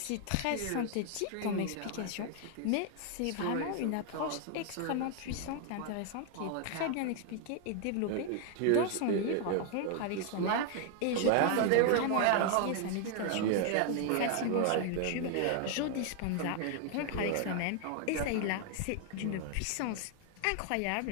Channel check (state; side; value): different; both; correlation 0.00